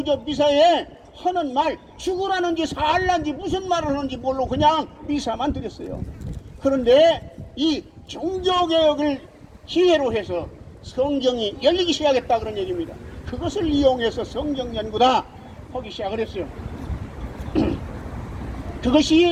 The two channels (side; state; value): both; identical; correlation 1.00